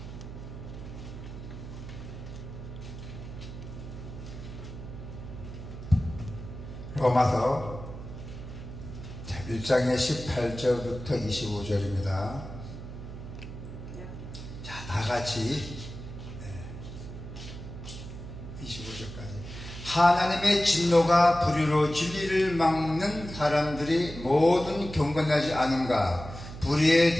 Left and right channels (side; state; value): right; noise; hum, 11 dB below the sound